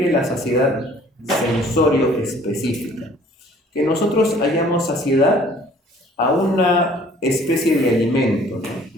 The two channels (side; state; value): both; normal; correlation 0.55